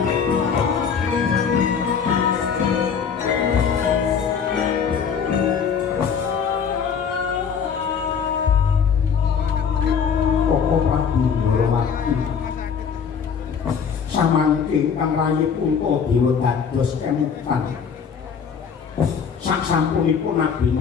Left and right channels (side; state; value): right; quieter; 6.7 dB